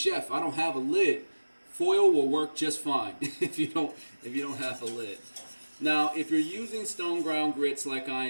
I don't have a lid." Foil will work just fine if you don't have a lid. Now, if you're using stone ground grits like I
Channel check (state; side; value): inverted; both; correlation -1.00